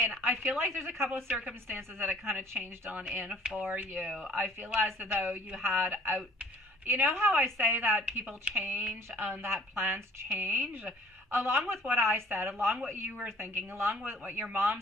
I feel like there's a couple of circumstances that it kind of changed on in for you. I feel as though you had out, you know how I say that people change and that plans change? Along with what I said, along what you were thinking, along with what your mom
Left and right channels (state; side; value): normal; both; correlation 0.55